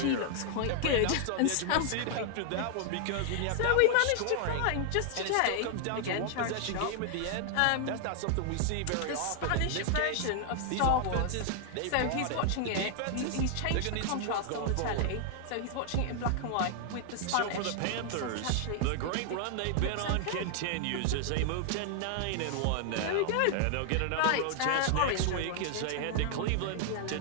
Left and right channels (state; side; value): different; both; correlation 0.00